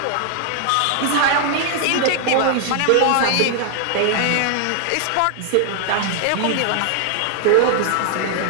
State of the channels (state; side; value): different; both; correlation 0.00